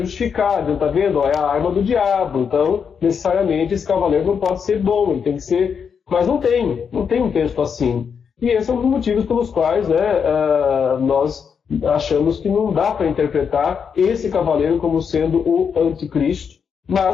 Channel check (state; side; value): quieter; right; 6.7 dB